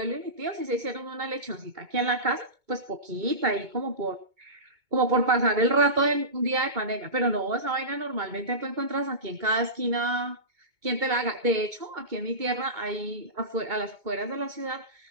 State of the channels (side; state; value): left; late; 2.2 ms